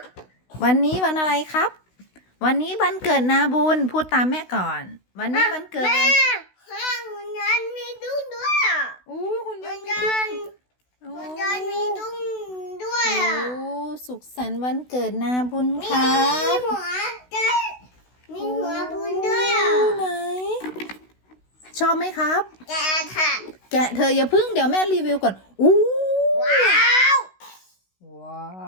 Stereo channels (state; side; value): late; right; 16 ms